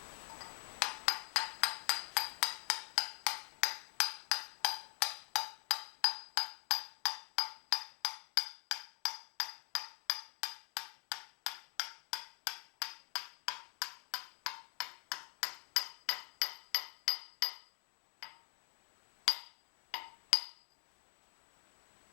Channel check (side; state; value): right; quieter; 25.6 dB